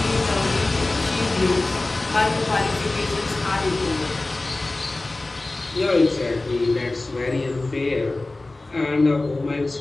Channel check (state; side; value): quieter; right; 3.0 dB